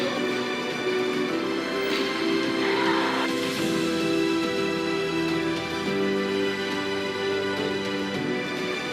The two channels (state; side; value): identical; both; correlation 1.00